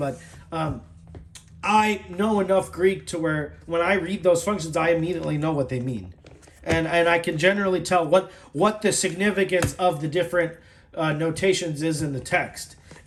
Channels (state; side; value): identical; both; correlation 1.00